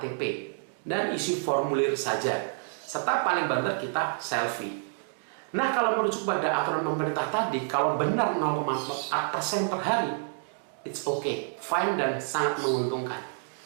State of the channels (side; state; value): left; silent; digital silence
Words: dan isi formulir saja, serta paling banter kita selfie. Nah, kalau merujuk pada aturan pemerintah tadi, kalau benar 0,4% per hari, it's okay, fine dan sangat menguntungkan